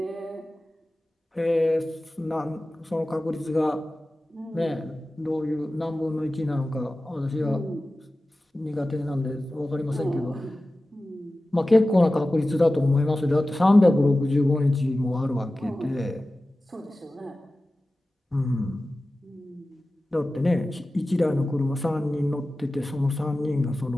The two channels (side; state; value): both; normal; correlation 0.96